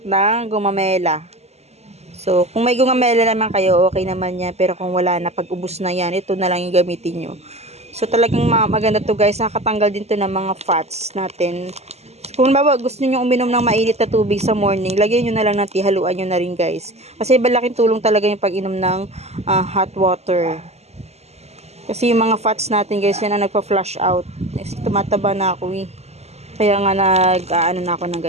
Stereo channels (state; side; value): late; left; 0.31 ms